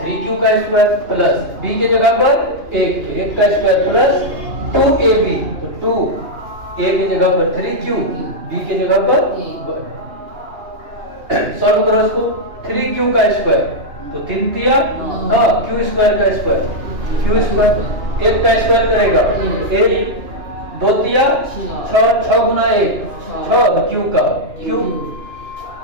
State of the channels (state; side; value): late; left; 2.9 ms